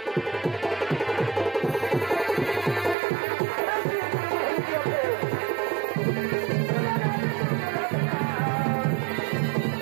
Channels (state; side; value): drops out; left; at 3.0 s